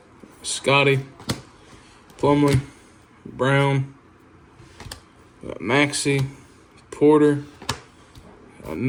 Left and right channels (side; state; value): both; identical; correlation 1.00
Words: Scotty, Plumlee, Brown, Maxey, Porter,